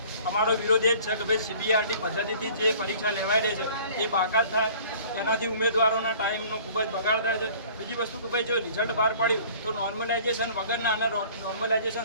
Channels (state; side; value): inverted; both; correlation -0.50